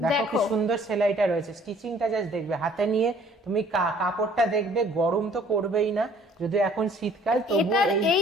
দেখো কি সুন্দর সেলাইটা রয়েছে, স্টিচিংটা জাস্ট দেখবে, হাতে নিয়ে তুমি কাপড়টা দেখবে, গরম তো করবেই না, যদি এখন শীতকাল তবু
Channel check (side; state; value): both; normal; correlation 0.56